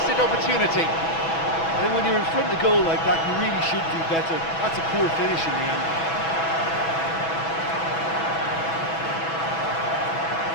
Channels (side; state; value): right; late; 6.1 ms